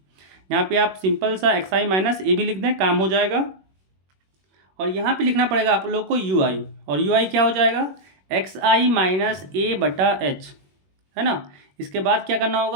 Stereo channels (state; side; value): late; left; 21 ms